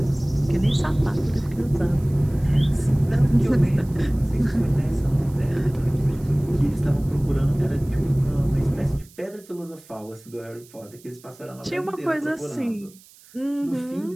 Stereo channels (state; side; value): noise; right; hiss, 25 dB below the sound